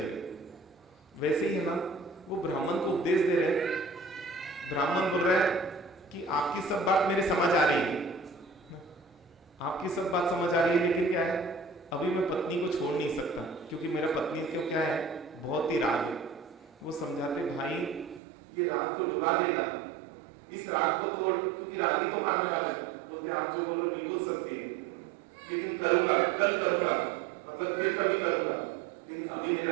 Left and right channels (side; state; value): left; drops out; at 18.2 s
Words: वैसे ही है ना, वो ब्राह्मण को उपदेश दे रहे, ब्राह्मण बोल रहा है कि आपकी सब बात मेरे समझ आ रही है, आपकी सब बात समझ आ रही है, लेकिन क्या है, अभी मैं पत्नी को छोड़ नहीं सकता, क्योंकि मेरा पत्नी को क्या है, बहुत ही राग है। वो समझाते, भाई ये राग तो डुबा देगा, इस राग को तोड़, क्योंकि राग ही तो मारने वाला है। बोलते आप जो बोलो बिल्कुल सत्य है, लेकिन करूंगा, कल करूंगा, मतलब फिर कभी करूंगा, लेकिन अभी